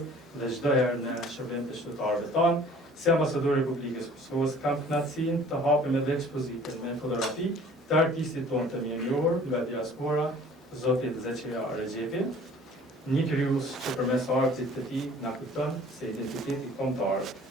dhe çdo herë në shërbim të qytetarëve tanë, si ambasador i Republikës Kosovës kam kënaqësinë të hapim edhe ekspozitën me fotografi të artistit tonë të mirënjohur nga diaspora, Zotit Zeqeja Regjepi, një krijues që përmes artit të tij na kujton se identiteti kombëtar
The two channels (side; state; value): both; normal; correlation 0.50